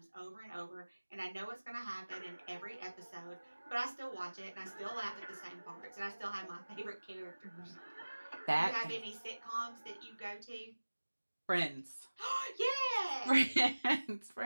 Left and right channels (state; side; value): inverted; both; correlation -1.00